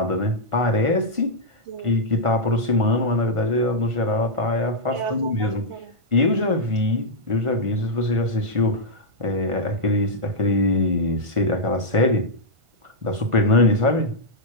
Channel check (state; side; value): late; left; 1.5 ms